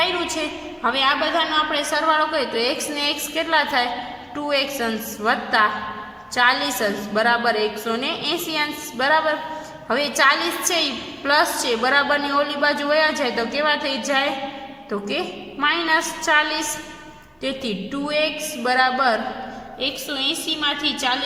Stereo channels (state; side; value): identical; both; correlation 1.00